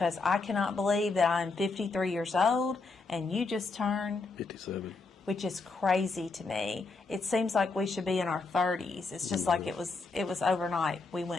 I cannot believe that I'm 53 years old and you just turned 57, which is crazy to me. It seems like we should be in our 30s. It's just like it was overnight. We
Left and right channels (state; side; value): quieter; right; 3.9 dB